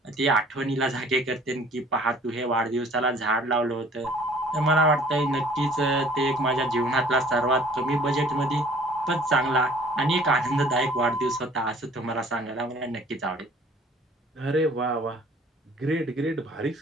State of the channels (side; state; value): both; normal; correlation 0.53